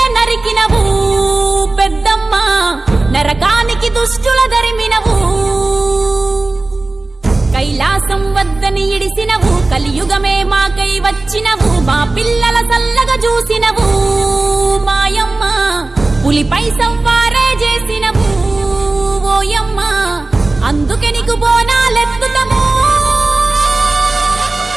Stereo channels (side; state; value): left; quieter; 3.1 dB